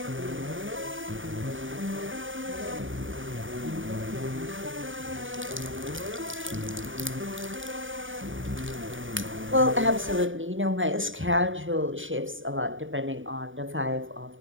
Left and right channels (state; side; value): late; left; 0.57 ms